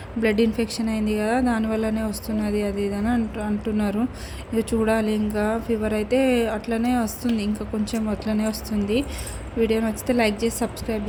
బ్లడ్ ఇన్ఫెక్షన్ అయింది కదా, దానివల్లనే వస్తున్నది అది ఇది అని అంటున్నారు. ఇక చూడాలి, ఇంకా ఫీవర్ అయితే అట్లనే వస్తుంది, ఇంకా కొంచెం అట్లనే వస్తుంది. వీడియో నచ్చితే లైక్ చేసి సబ్స్క్రైబ్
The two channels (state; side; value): identical; both; correlation 1.00